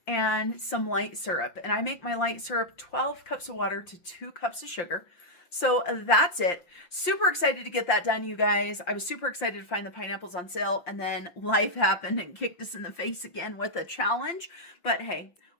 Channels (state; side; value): late; right; 5.7 ms